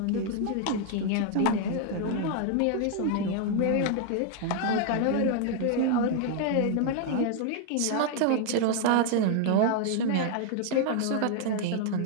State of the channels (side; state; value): both; different; correlation 0.00